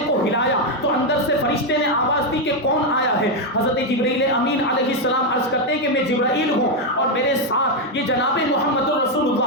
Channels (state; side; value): normal; both; correlation 0.04